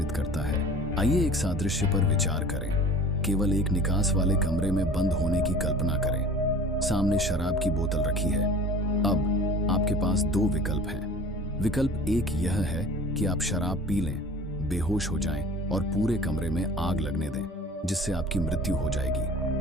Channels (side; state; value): both; normal; correlation 0.43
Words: करता है। आइए एक सादृश्य पर विचार करें। केवल एक निकास वाले कमरे में बंद होने की कल्पना करें। सामने शराब की बोतल रखी है। अब आपके पास दो विकल्प हैं। विकल्प एक यह है कि आप शराब पी लें, बेहोश हो जाएं और पूरे कमरे में आग लगने दें, जिससे आपकी मृत्यु हो